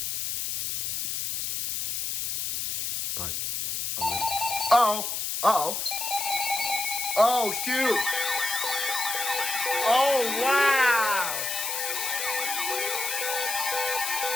But... Oh, shoot! Oh, wow!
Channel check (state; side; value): noise; left; hiss, 2 dB below the sound